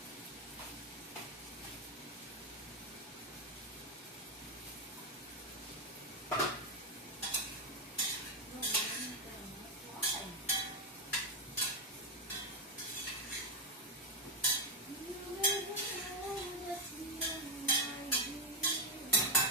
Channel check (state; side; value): normal; both; correlation 0.06